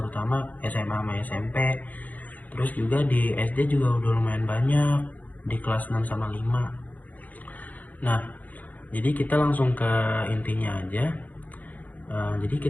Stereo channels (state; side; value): late; right; 0.080 ms